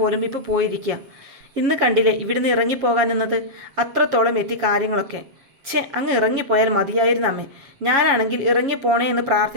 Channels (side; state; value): left; late; 7.4 ms